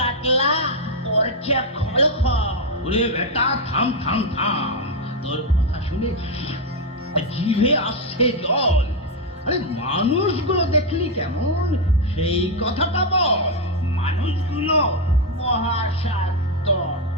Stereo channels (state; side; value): normal; both; correlation 0.04